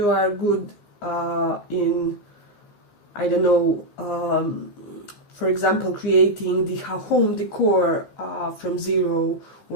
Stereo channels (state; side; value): late; right; 15 ms